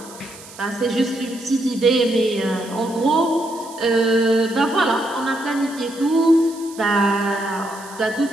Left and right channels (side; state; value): right; noise; hiss, 18 dB below the sound